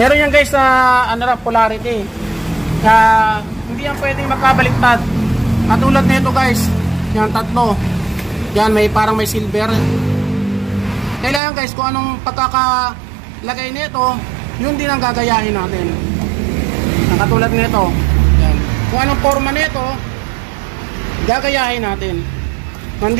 yan guys na polarity. Hindi yan pwedeng magkabaliktad. Katulad nito guys. Yan, 3. Yan, parang may silver. Kailangan guys, kung anong pagkakalagay nito, yun din ang gagayahin natin. Katulad nito. Yan. Kung anong forma nito, gagayahin natin.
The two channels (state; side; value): drops out; left; at 11.4 s